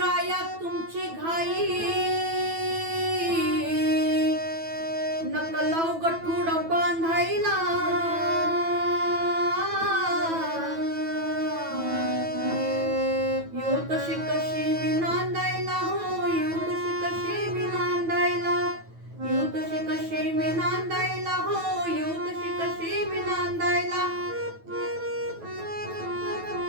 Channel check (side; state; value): left; late; 9.1 ms